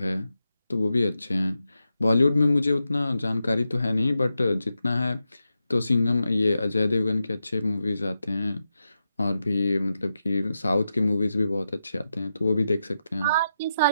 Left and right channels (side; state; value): both; inverted; correlation -0.88